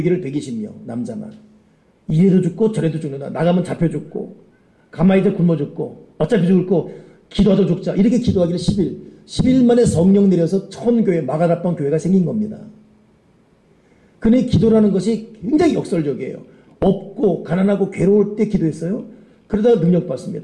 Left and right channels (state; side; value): identical; both; correlation 1.00